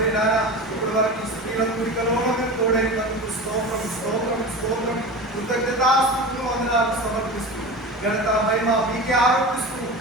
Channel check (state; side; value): normal; both; correlation 0.30